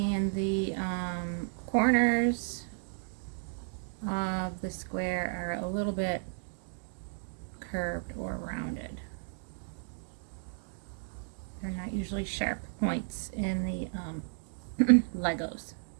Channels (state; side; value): silent; left; digital silence